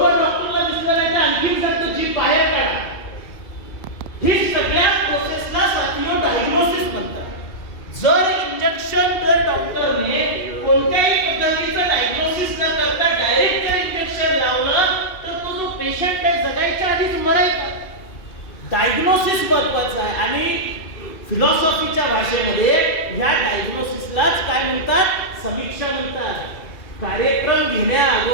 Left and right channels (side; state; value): right; late; 2.5 ms